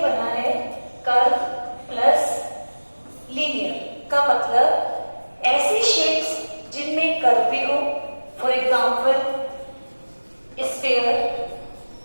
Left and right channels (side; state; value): both; inverted; correlation -1.00